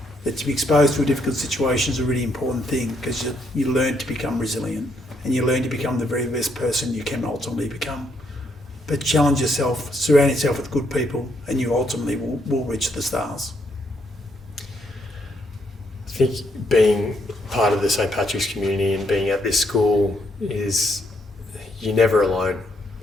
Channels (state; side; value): normal; both; correlation 0.74